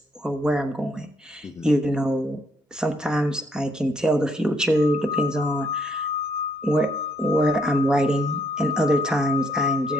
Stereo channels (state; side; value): normal; both; correlation 0.71